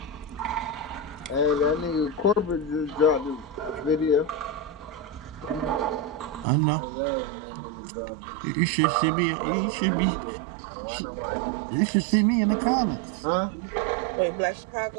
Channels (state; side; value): drops out; left; at 6.5 s